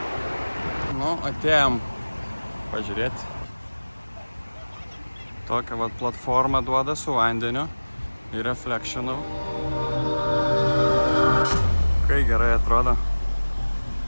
Nu, atėjom pažiūrėti. Tokią vat platformą duoda su vandeniu ir reflectionu. Kai gerai atrodo.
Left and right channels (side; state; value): both; inverted; correlation -1.00